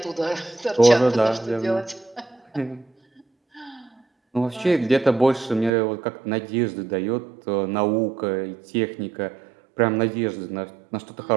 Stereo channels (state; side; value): drops out; left; at 5.7 s